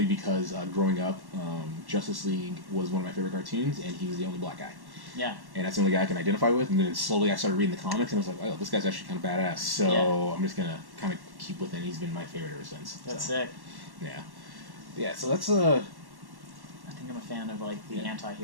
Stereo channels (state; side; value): late; left; 1.1 ms